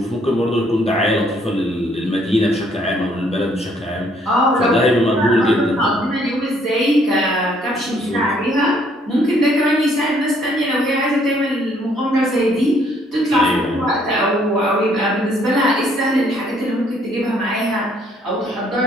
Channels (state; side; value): normal; both; correlation 0.66